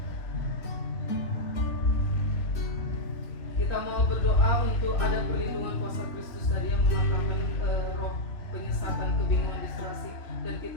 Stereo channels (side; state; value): right; late; 3.3 ms